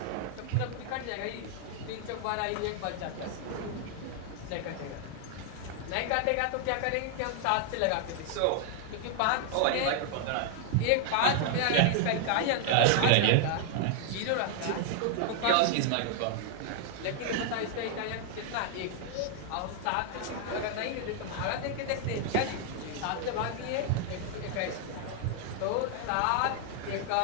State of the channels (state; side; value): different; both; correlation 0.00